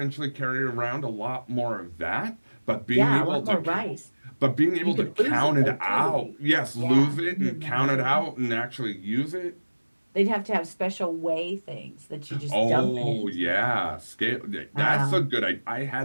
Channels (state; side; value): inverted; both; correlation -1.00